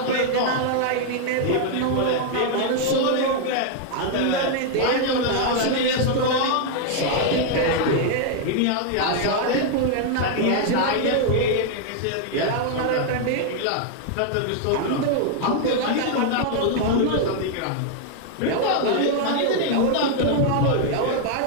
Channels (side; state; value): both; different; correlation 0.00